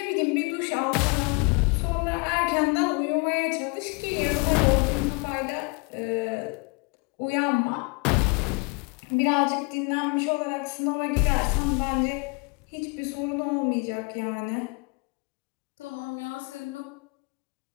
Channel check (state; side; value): quieter; right; 31.7 dB